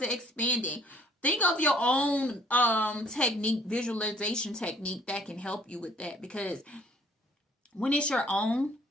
it expanding. Think of your own technique, visualization technique that can help you with that, because when it's your own,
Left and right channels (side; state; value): both; normal; correlation 0.58